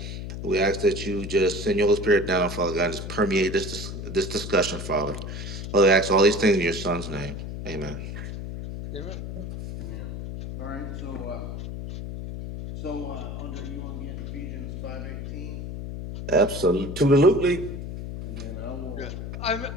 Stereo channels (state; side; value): noise; left; hum, 7 dB below the sound